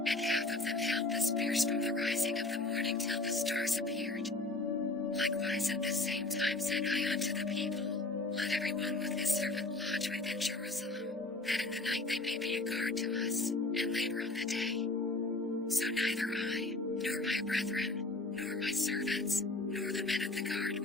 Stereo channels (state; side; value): quieter; right; 3.0 dB